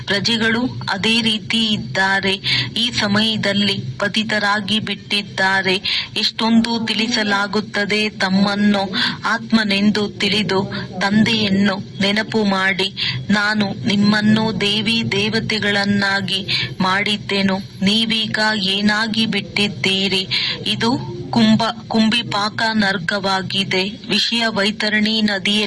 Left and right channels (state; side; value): identical; both; correlation 1.00